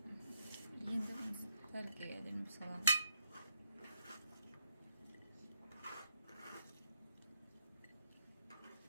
Енді тәркеге әдемі саламыз.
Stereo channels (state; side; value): inverted; both; correlation -0.76